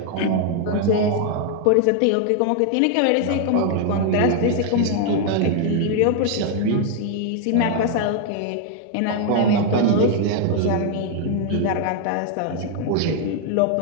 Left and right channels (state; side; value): different; both; correlation 0.00